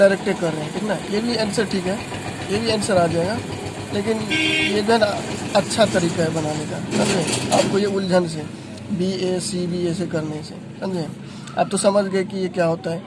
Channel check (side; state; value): both; identical; correlation 1.00